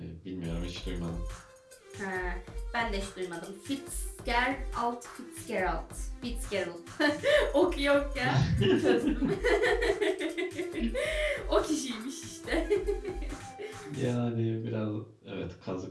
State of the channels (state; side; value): identical; both; correlation 1.00